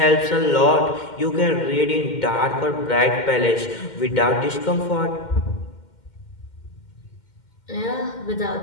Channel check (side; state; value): right; late; 2.1 ms